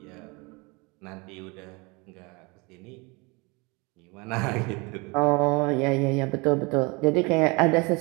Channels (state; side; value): quieter; left; 27.8 dB